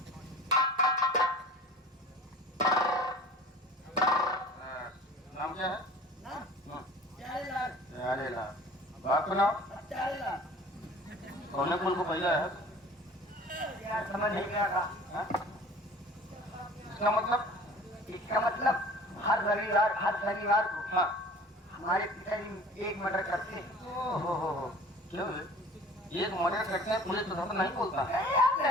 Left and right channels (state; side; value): normal; both; correlation 0.44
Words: नाम क्या है? नाम? प्यारेलाल। प्यारेलाल। बाप का नाम? प्यारेलाल। कौन कुल को पहला है? यार समझ नहीं गया था। इसका मतलब? इसका मतलब हर शनिवार को हाँ, हमारे पिताजी एक मर्डर करते हैं। ओहो, क्यों है? एक मर्डर करते हैं, पुलिस तो नहीं बोलता है।